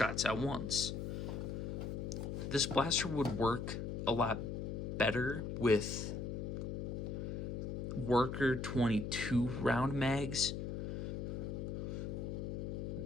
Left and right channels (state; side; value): noise; left; hum, 4 dB below the sound